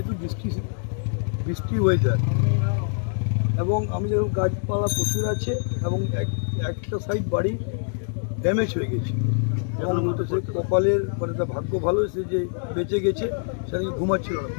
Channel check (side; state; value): right; silent; digital silence